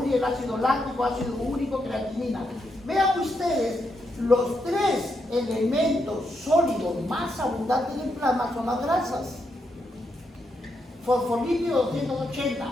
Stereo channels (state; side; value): normal; both; correlation 0.81